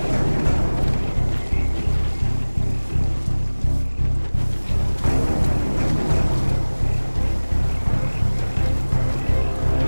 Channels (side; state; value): both; inverted; correlation -1.00